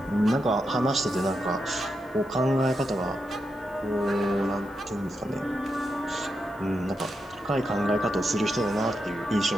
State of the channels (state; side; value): noise; left; hiss, 30 dB below the sound